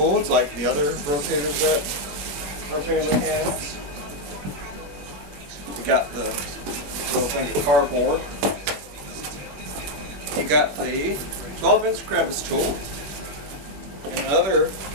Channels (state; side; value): late; left; 21 ms